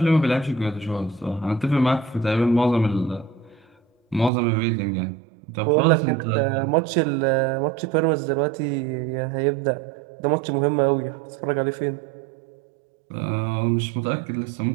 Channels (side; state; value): left; drops out; at 4.3 s